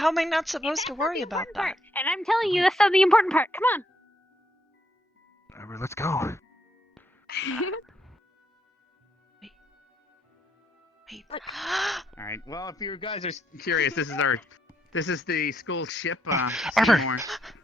am I not That's supposed to not worry the about important that? part. And I'm telling you, that's not the important part. Come on. Whatever, let's go. Wait. Look. All right. Well, if you guys are curious, this is the school ship. Arbor. Seymour.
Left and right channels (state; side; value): normal; both; correlation 0.74